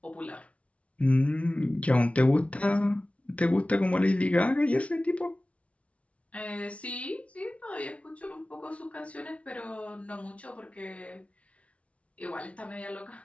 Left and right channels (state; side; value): late; right; 0.064 ms